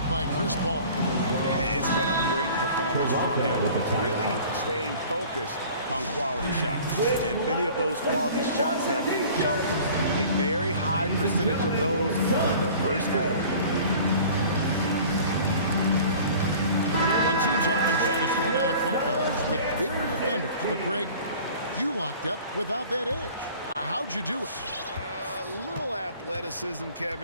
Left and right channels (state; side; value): inverted; both; correlation -0.46